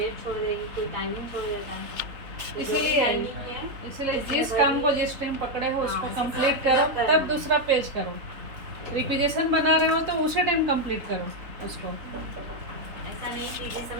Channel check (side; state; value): left; late; 3.6 ms